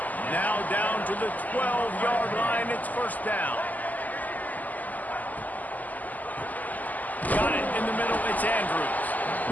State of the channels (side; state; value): right; late; 0.081 ms